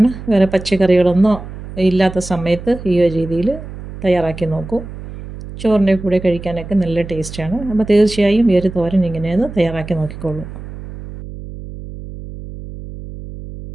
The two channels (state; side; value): noise; right; hum, 12 dB below the sound